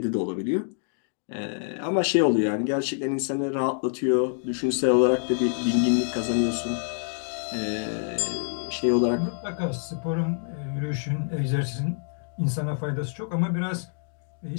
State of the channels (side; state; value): right; silent; digital silence